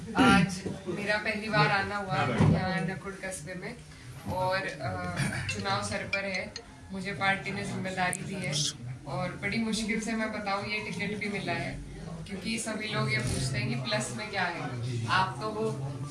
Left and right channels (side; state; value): both; identical; correlation 1.00